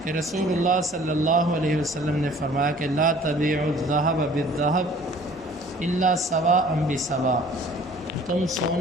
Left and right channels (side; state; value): both; normal; correlation 0.52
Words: کہ رسول اللہ صلی اللہ علیہ وسلم نے فرمایا کہ لا تبیعوا الذهب بالذهب الا سواء بسواء، تم